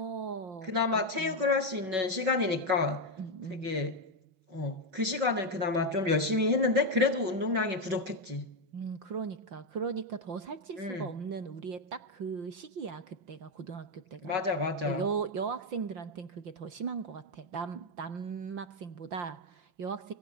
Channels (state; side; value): late; left; 5.4 ms